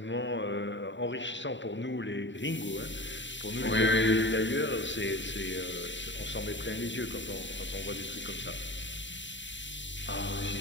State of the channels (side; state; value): right; late; 0.54 ms